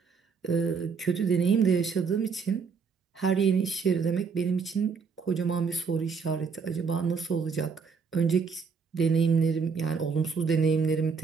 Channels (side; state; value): left; quieter; 5.5 dB